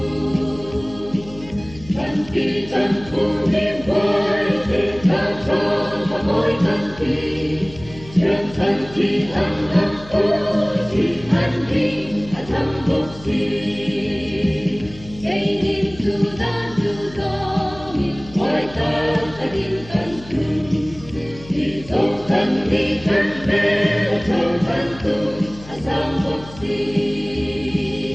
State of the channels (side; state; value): left; noise; hum, 18 dB below the sound